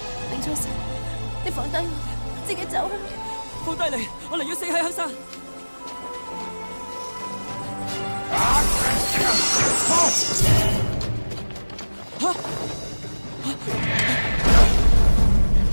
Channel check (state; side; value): inverted; both; correlation -1.00